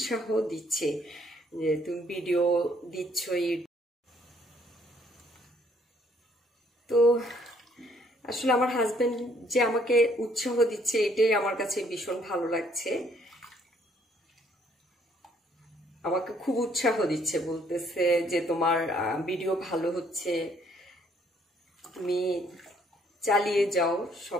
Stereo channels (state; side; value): normal; both; correlation 0.65